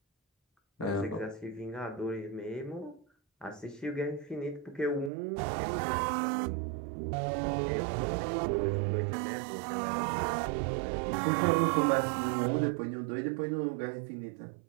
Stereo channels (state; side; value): drops out; left; at 5.1 s